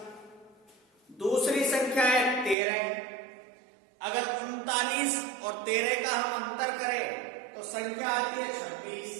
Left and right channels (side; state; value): left; drops out; at 2.6 s